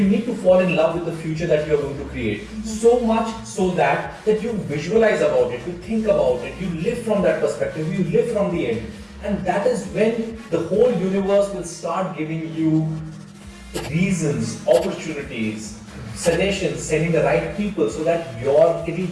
need to fall in love with the future that you're going to create. So much so that you visualize about it, you think about it, you live from that perspective, you live from the end. And that is when the whole universe will start giving you reasons, opportunities, suggestions, sending the right people so that it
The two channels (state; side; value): identical; both; correlation 1.00